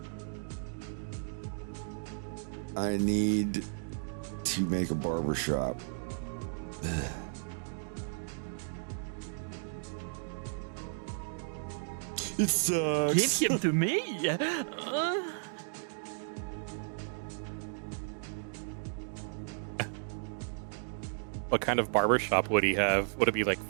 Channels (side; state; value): left; silent; digital silence